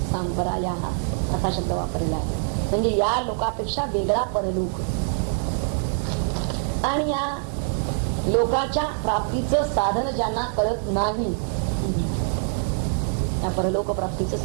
सांपराया असा शब्द वापरलेला आहे. म्हणजे या लोकापेक्षा वेगळा परलोक, आणि या लोकाच्या प्राप्तीचं साधन ज्यांना कळत नाही, या परलोक प्राप्तीचं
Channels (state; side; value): silent; left; digital silence